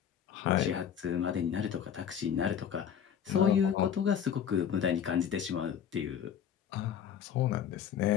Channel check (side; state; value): right; quieter; 8.6 dB